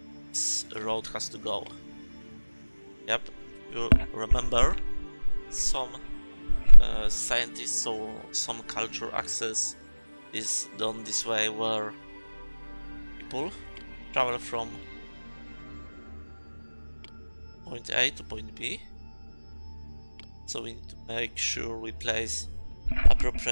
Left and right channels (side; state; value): both; inverted; correlation -1.00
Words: This road has to go. Yep, you remember some scientists or some culture access is done this way, where people travel from point A to point B. So we need to make sure we place